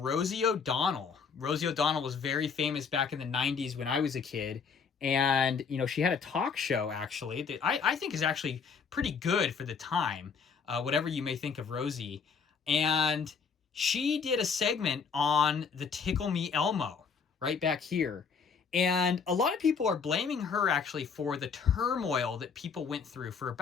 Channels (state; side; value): quieter; right; 5.9 dB